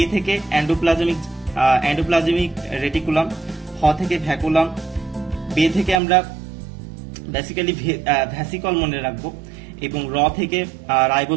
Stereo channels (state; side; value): drops out; left; at 6.0 s